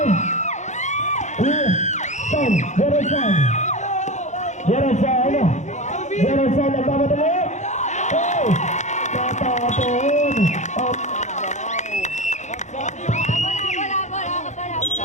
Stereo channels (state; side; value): late; right; 0.34 ms